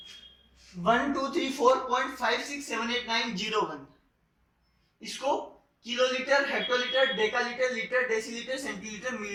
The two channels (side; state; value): both; identical; correlation 1.00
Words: 12345678901, इसको kilolitre, hectolitre, decalitre, litre, decilitre, centilitre,